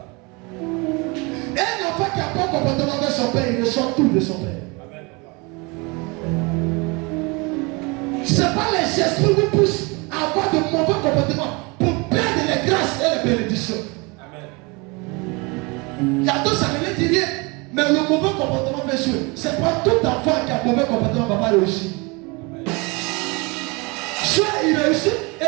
Un enfant qui a pas de comportement avec son père, il reçoit tout de son père. Amen, papa. Ce n'est pas les esprits qui vous poussent à avoir de mauvais comportements pour perdre les grâces et les bénédictions. Amen. Il y a deux, ça ne dit rien, mais le mauvais comportement fait jouer. Ce n'est pas tout enfant qui a un mauvais comportement va pas réussir. Soit il réussit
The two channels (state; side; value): quieter; left; 27.9 dB